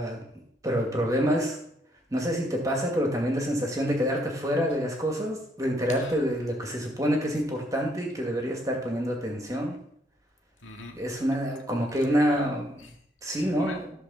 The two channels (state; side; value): normal; both; correlation 0.70